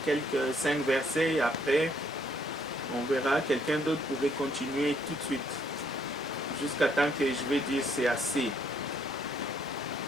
quelques 5 versets et après, on verra. Quelqu'un d'autre pourrait continuer tout de suite. Jusqu'à temps que je vais dire c'est assez.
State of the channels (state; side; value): normal; both; correlation 0.69